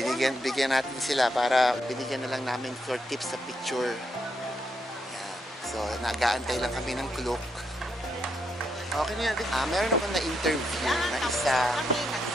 natin sila para binigyan na lang namin for tips sa picture. Yan. So, nag-aantay lang kami ng clock. Okay na yan. Meron ako na-interview na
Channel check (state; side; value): normal; both; correlation 0.79